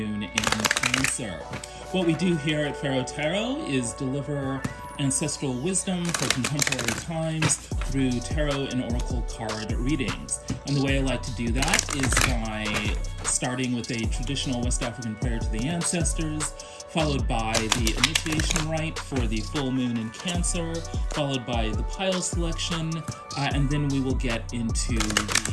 in Cancer. What we do here at Pharaoh Tarot is deliver ancestral wisdom for contemporary times through tarot and oracle card readings. And the way I like to do that is by starting with a traditional West African prayer to the ancestors, followed by the initiation rite for the full moon in Cancer, followed by the pile selection, and then we will get into the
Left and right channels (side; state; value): both; identical; correlation 1.00